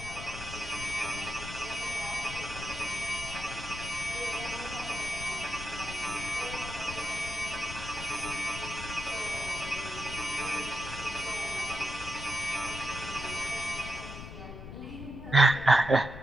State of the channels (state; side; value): noise; left; rumble, 10 dB below the sound